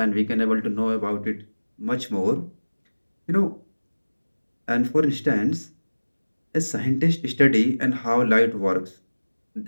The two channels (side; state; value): both; inverted; correlation -1.00